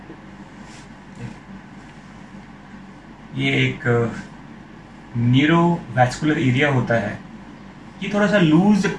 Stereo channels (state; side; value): identical; both; correlation 1.00